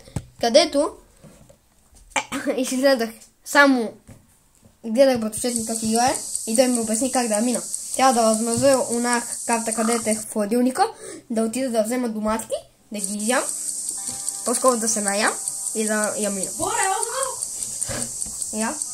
където изгледах само гледах братовчет как играе и той ми обясни как да я мина. Трябва да възмразя она карта, където е в хладилника, да отида да взема доматки, да ги ям, по-скоро да се наям и да я мина. Я?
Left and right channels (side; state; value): both; identical; correlation 1.00